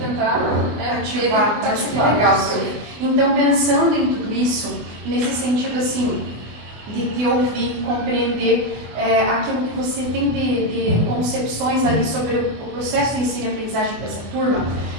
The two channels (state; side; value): late; left; 24 ms